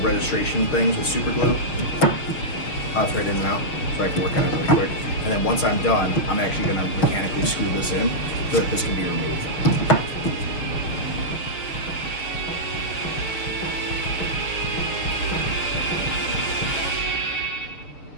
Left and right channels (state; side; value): late; right; 6.0 ms